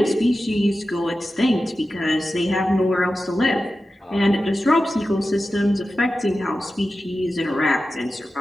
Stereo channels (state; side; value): normal; both; correlation 0.93